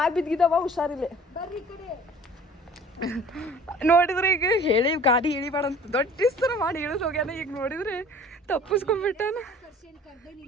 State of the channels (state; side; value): normal; both; correlation 0.48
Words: ಬಿದ್ದಿದ್ದಾವ, ಹುಷಾರಿಲ್ಲ. ನೋಡಿದ್ರೆ ಈಗ ಹೇಳಿ ಗಾಡಿ ಇಳಿಬೇಡ ಅಂತ ದೊಡ್ಡ ಥರ ಮಾಡಿ ಇಳಿದು ಹೋಗ್ಯಾನ. ಈಗ ನೋಡಿದ್ರೆ ತಪ್ಪಿಸ್ಕೊಂಡ್ಬಿಟ್ಟಾನ.